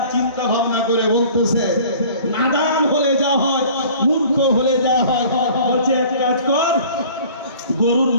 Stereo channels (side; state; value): both; inverted; correlation -0.48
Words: চিন্তা ভাবনা করে বলতেছে, নাদান হলে যা হয়, মূর্খ হলে যা হয়, বলছে এক কাজ কর, গরুর